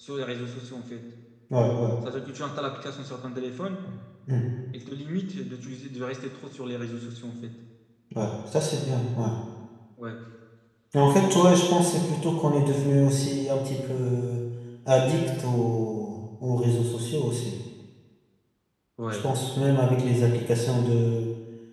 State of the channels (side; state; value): both; identical; correlation 1.00